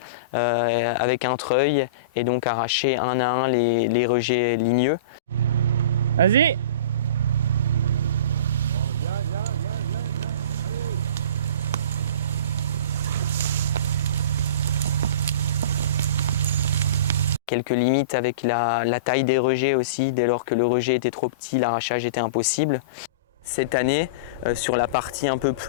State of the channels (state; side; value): inverted; both; correlation -0.32